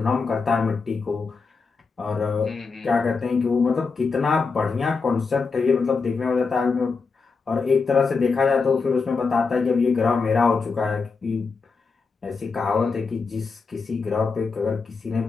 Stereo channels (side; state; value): right; quieter; 4.7 dB